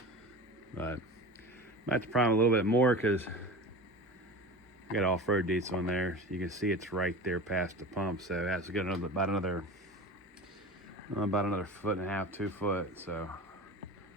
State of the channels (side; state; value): both; normal; correlation 0.33